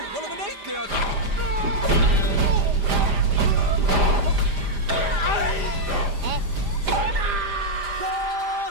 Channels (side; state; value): left; late; 5.0 ms